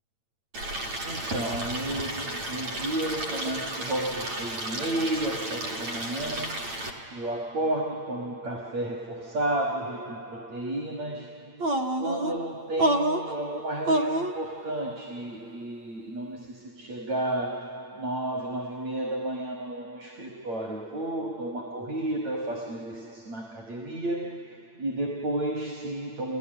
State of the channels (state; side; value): late; left; 8.8 ms